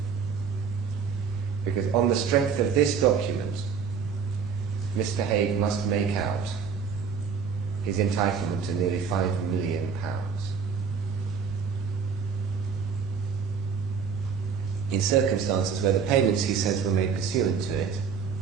Because on the strength of this document, Mr. Haigh must make out his entitlement to nearly £5 million. In circumstances where the payments he says were made pursuant to it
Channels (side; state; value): left; quieter; 6.3 dB